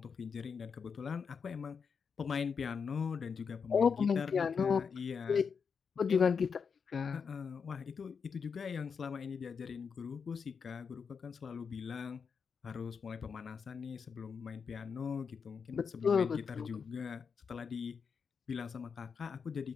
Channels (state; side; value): quieter; right; 6.0 dB